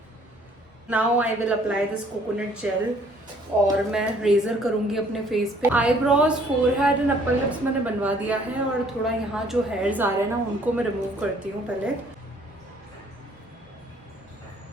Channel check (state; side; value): normal; both; correlation 0.60